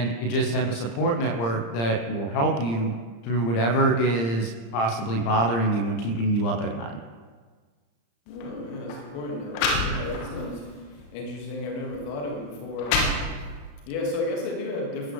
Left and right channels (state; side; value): late; right; 35 ms